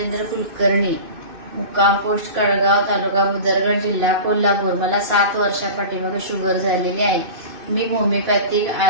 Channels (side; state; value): left; late; 2.6 ms